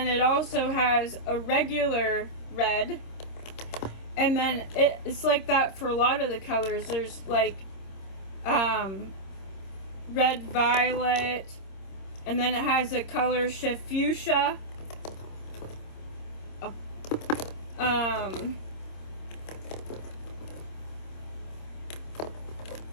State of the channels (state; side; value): late; right; 26 ms